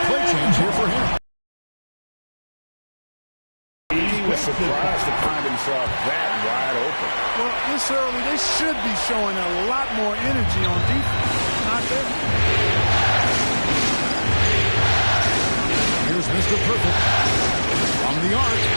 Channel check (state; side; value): inverted; both; correlation -1.00